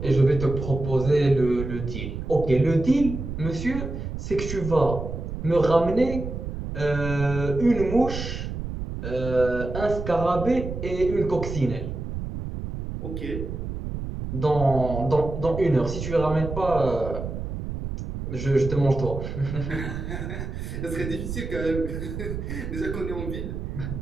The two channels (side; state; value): right; noise; rumble, 6 dB below the sound